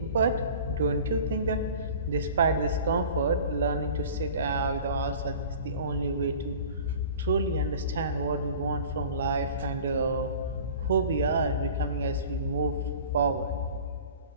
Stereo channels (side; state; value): both; inverted; correlation -0.43